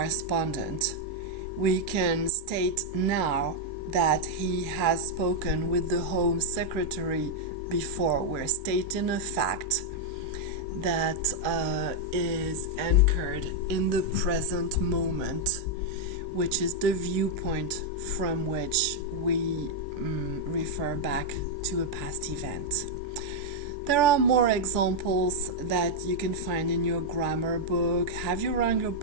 We can state now that he has spoken with the Home Secretary before. We're stating a fact that is anchored in the present moment, which is the viewpoint from which we refer back to a past event. There are more examples that you can find in your grammar book. Have you rung your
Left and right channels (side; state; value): left; late; 2.3 ms